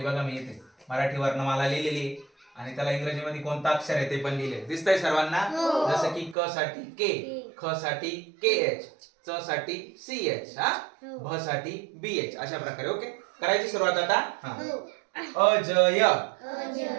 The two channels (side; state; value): left; drops out; at 6.4 s